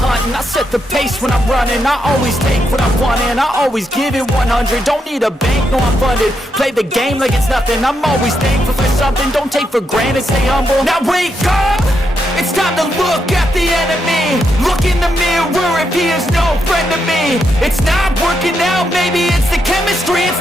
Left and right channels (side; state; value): both; normal; correlation 0.81